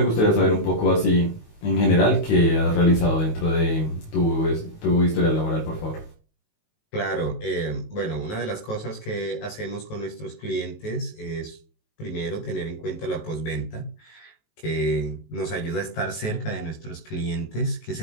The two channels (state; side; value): late; right; 19 ms